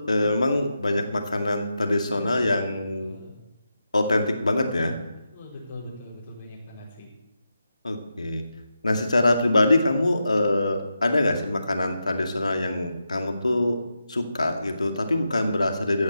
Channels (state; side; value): inverted; both; correlation -0.87